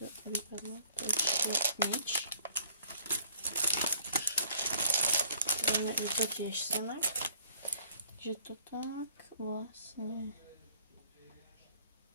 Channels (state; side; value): inverted; both; correlation -0.59